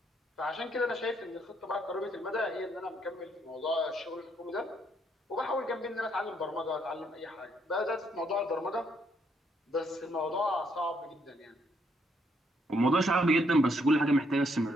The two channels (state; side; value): normal; both; correlation 0.72